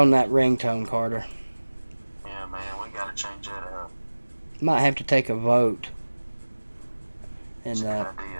that ringtone, Carter. Yeah, man, we gotta change that up. Might have to take a vote in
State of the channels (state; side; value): inverted; both; correlation -1.00